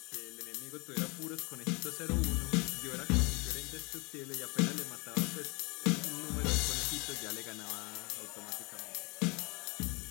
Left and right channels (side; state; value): right; quieter; 28.6 dB